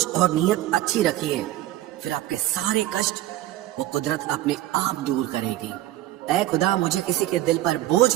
اور نیت اچھی رکھیے، پھر آپ کے سارے کشٹ وہ قدرت اپنے آپ دور کرے گی. اے خدا مجھے کسی کے دل پر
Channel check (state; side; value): quieter; left; 14.9 dB